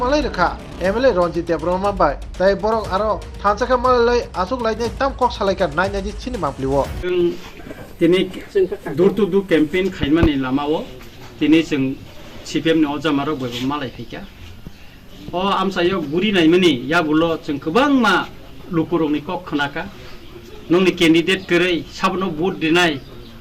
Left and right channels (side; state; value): both; identical; correlation 1.00